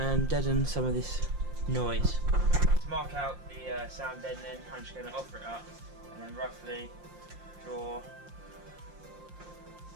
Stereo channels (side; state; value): left; late; 5.7 ms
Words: deaden some of this noise. To mark out the sound deadening, I'm just going to offer it up and then roughly draw